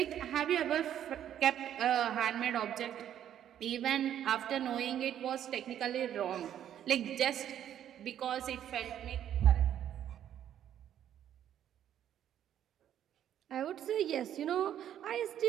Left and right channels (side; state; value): left; quieter; 10.5 dB